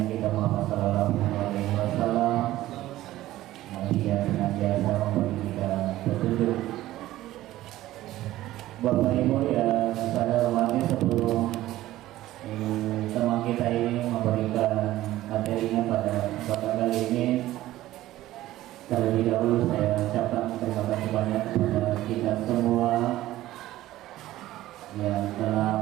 kita Muhammad Sallallahu Alaihi Wasallam, yang senantiasa memberi kita petunjuk. Bapak Ibu yang saya hormati, sebelum teman kita ini memberikan materinya pada kesempatan kali ini, terlebih dahulu saya ucapkan terima kasih banyak kepada kita semua yang telah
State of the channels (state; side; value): quieter; left; 15.3 dB